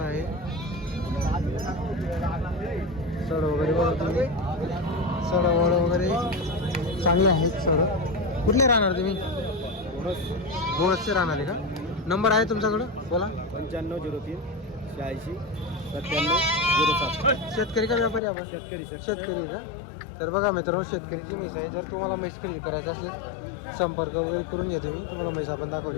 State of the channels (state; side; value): drops out; right; at 18.2 s